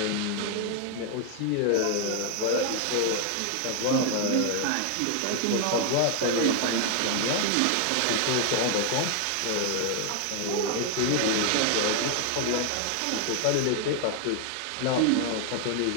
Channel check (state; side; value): different; both; correlation 0.00